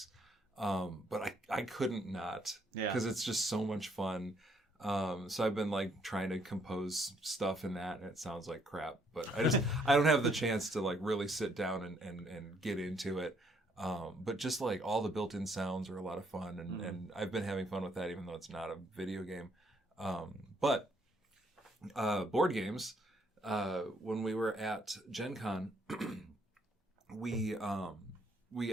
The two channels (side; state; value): both; normal; correlation 0.69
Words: But I couldn't not because it's just so much fun. So I've been like trying to compose stuff in that, and it sounds like crap. But I don't have the chance to like really sit down and get into it. But just like all the built-in sounds are a lot of fun, and I've been having fun with that, even though it's not a video game. But board games, when we were at Gen Con, we